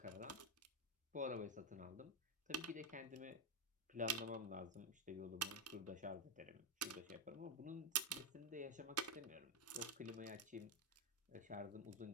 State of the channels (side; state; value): both; normal; correlation 0.05